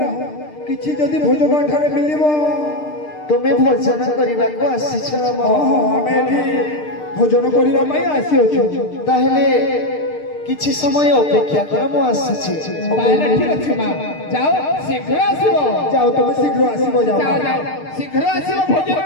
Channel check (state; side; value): late; right; 6.6 ms